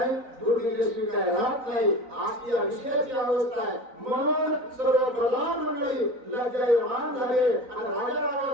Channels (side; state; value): left; late; 3.9 ms